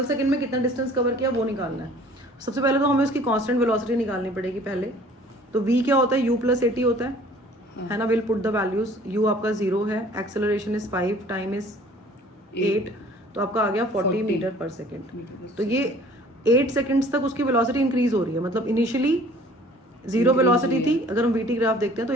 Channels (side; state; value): both; normal; correlation 0.52